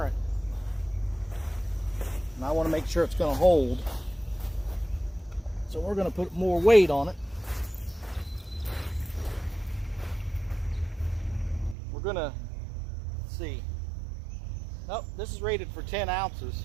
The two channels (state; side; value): drops out; left; at 11.8 s